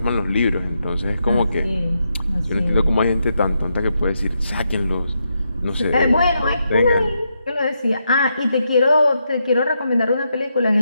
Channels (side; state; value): both; inverted; correlation -0.82